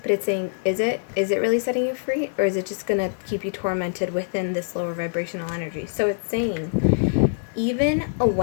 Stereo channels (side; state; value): right; silent; digital silence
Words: But it's saying, is it really setting you free, or is it just going to keep you tormented within this lower vibrational energy? So it's saying, even a